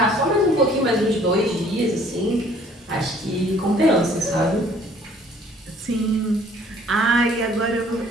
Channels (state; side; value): normal; both; correlation 0.57